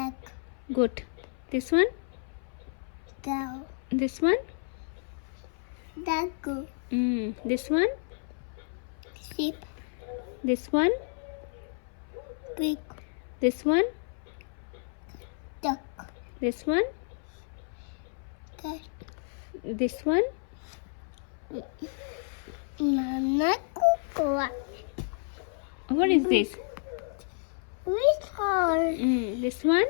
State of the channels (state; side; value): silent; right; 57 dB below the other